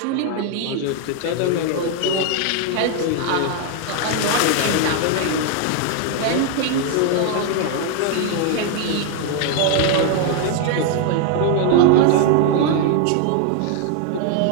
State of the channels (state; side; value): different; both; correlation 0.00